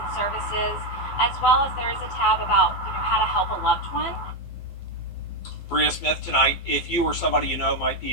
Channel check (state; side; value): late; right; 12 ms